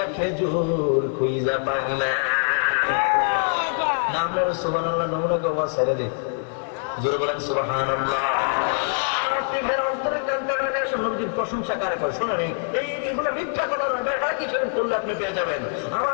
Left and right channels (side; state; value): right; silent; 63 dB below the other